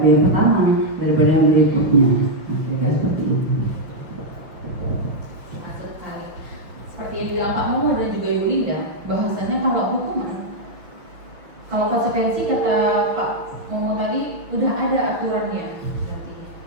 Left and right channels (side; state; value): left; late; 6.2 ms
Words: yang pertama daripada yang berikutnya. Kira-kira seperti itu. Seperti yang bilang Pak Momo dan juga Ibu Linda, bahwasannya kalau hukuman, kalau konsekuensi kata Pak Momo tadi udah ada aturannya,